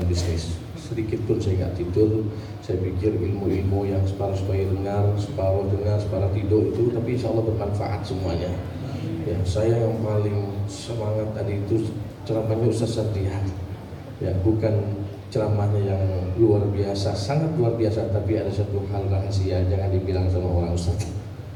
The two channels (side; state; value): both; identical; correlation 1.00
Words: bisnis. Sedikit pun saya nggak tidur. Saya pikir ilmu-ilmu yang separuh supaya dengar, separuh tidur itu, tapi insya Allah bermanfaat semuanya. Ya, saya yang paling semangat tadi itu ceramahnya Ustaz Satrihan. Ya, bukan ceramahnya yang luar biasa, sangat luar biasa, tapi ada satu hal rahasia, jangan dibilang sama orang Ustaz.